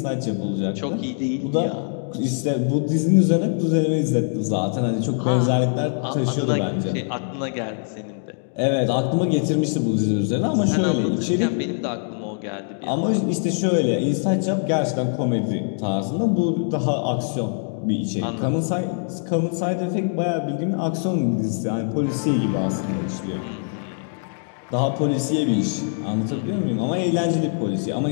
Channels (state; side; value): silent; right; digital silence